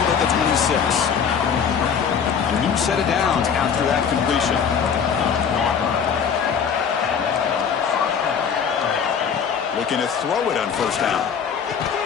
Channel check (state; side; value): quieter; right; 7.0 dB